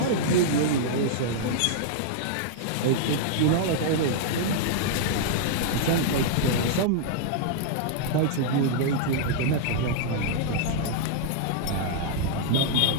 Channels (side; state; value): both; different; correlation -0.01